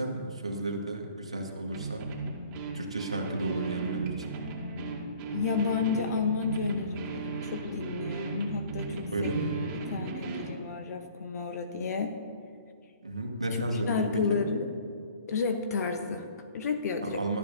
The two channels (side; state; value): both; inverted; correlation -0.52